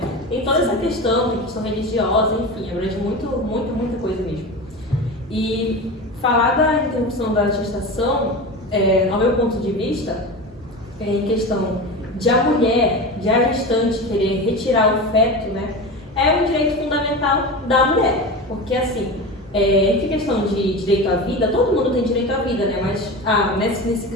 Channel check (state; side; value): normal; both; correlation 0.27